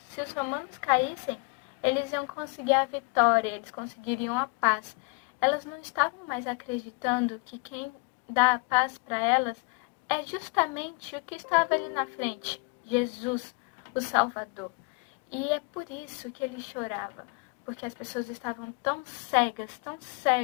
os romanos caíssem, eles iam conseguir a vitória, eles conseguiriam a paz. Elas não estavam mais acreditando que quem dá a paz para elas é justamente o que estava ali na frente, Jesus, o Salvador. E é por isso que ele chorava, porque as pessoas estavam tão cegas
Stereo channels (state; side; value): quieter; right; 31.9 dB